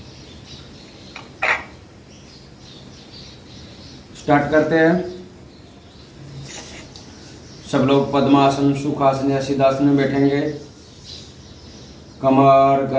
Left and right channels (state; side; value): identical; both; correlation 1.00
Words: Start करते हैं। सब लोग पद्मासन, सुखासन या सिद्धासन में बैठेंगे। कमर